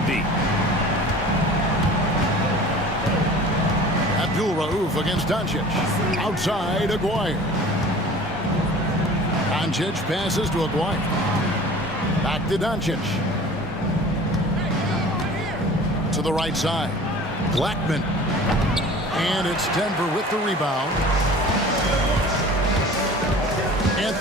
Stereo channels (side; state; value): both; normal; correlation 0.43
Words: deep. Abdul Rauf against Doncic. Outside, Aguirre. Doncic passes to Aguirre. Back to Doncic. To the right side. Blackman. And it's Denver with the rebound.